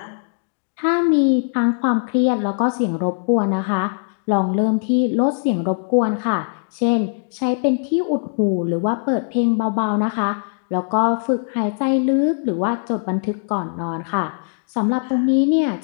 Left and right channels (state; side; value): silent; right; digital silence